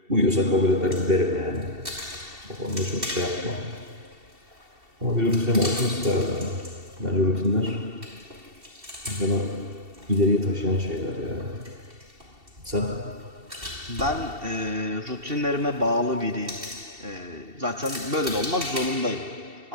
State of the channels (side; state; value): left; late; 2.7 ms